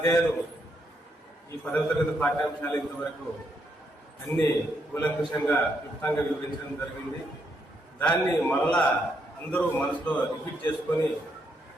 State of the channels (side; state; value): both; normal; correlation 0.77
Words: ఈ 10వ తరగతి పాఠ్యాంశాలు ఇంతవరకు అన్ని కూలంకుషంగా క్లుప్తంగా వివరించడం జరిగింది. దాన్ని మరలా అందరూ మనసులో రిపీట్ చేసుకొని